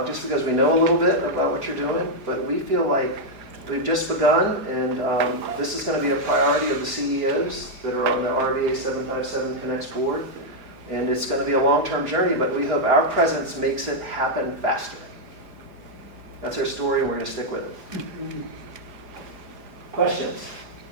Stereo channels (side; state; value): left; late; 4.9 ms